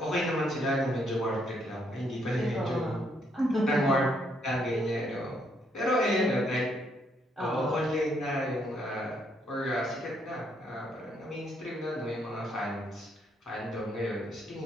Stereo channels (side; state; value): both; normal; correlation 0.72